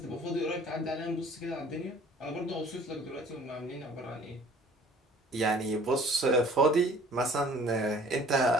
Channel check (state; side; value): normal; both; correlation 0.51